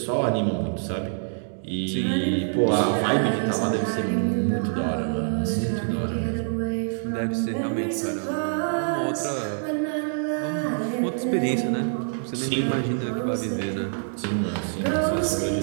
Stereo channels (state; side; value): silent; left; digital silence